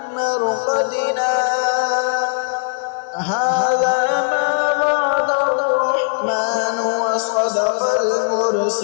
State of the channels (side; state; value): right; silent; 62 dB below the other